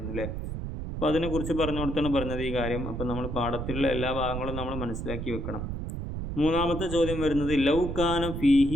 അല്ലേ. അപ്പോൾ അതിനെക്കുറിച്ച് പറഞ്ഞു കൊടുത്താണ് പറഞ്ഞത് ഈ കാര്യം. അപ്പോൾ നമ്മൾ പാഠത്തിലുള്ള എല്ലാ ഭാഗങ്ങളും നമ്മൾ മനസ്സിലാക്കി വെക്കണം. 3ാമത്തെ ചോദ്യം വരുന്നത് ലൗകാന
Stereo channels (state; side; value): noise; right; rumble, 5 dB below the sound